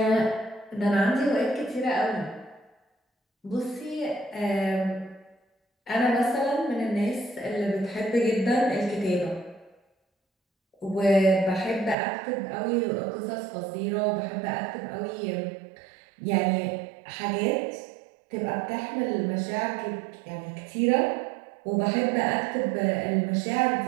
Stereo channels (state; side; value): drops out; left; at 12.0 s